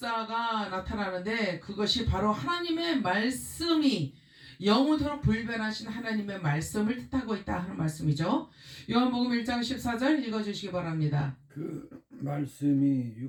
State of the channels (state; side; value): identical; both; correlation 1.00